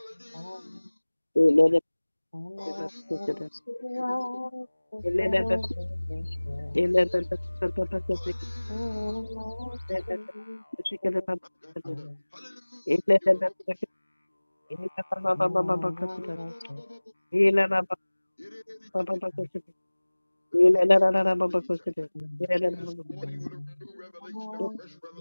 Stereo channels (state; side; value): inverted; both; correlation -1.00